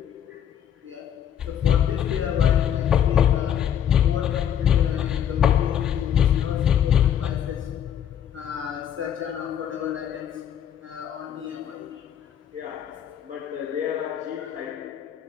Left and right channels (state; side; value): quieter; right; 9.4 dB